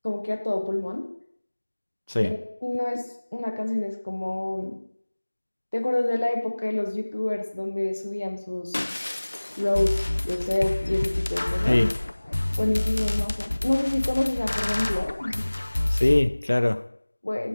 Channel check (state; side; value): inverted; both; correlation -1.00